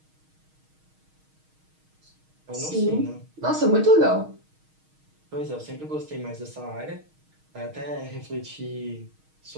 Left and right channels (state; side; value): late; left; 6.4 ms